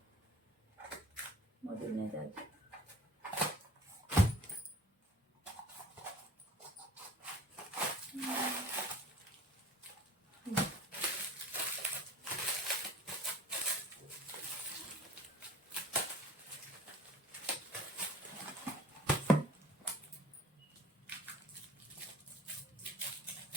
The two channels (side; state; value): both; normal; correlation 0.47